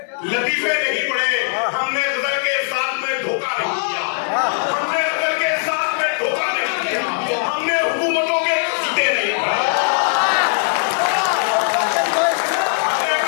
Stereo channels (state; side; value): silent; right; digital silence